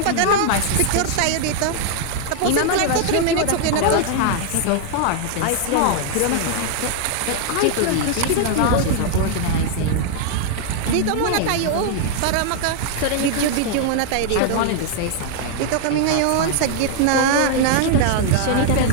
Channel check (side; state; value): both; different; correlation 0.00